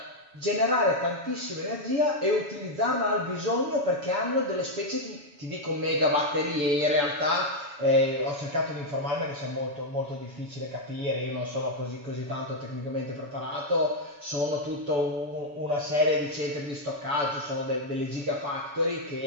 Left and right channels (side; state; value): left; late; 7.1 ms